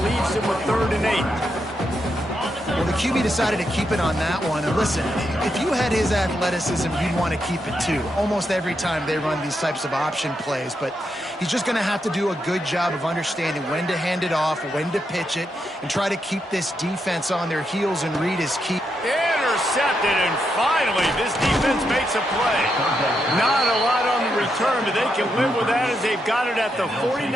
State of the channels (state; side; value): normal; both; correlation 0.82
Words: leaves him with 3rd and 8. Well, the QB decided to keep it on that one. And listen, if you had his athleticism, you'd want to keep it too. Almost every time they run these types of option plays. But he's just going to have to do a good job of understanding when to hand it off, when to pitch it, and try to keep this defense on their heels and read his key. Intercepted, and finally this defense makes a play. Not a lot on the return, but they can live with that as they've got it at the